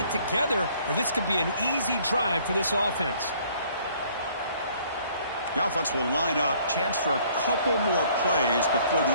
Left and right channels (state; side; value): inverted; both; correlation -0.60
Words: together, or this could be an easy drive for this offense. The offense will line up. Chance for a couple more plays before